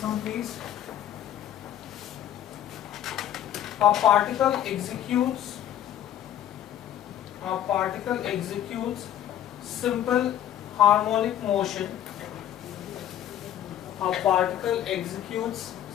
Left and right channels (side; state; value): right; quieter; 11.2 dB